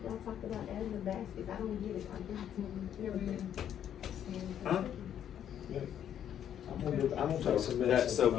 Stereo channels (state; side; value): quieter; right; 9.8 dB